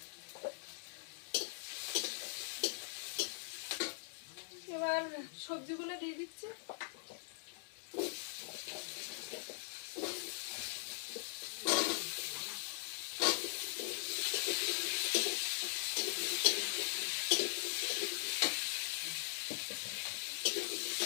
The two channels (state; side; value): silent; right; digital silence